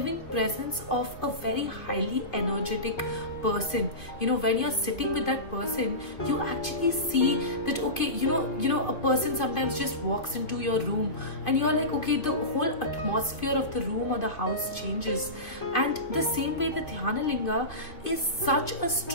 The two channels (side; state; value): right; late; 2.7 ms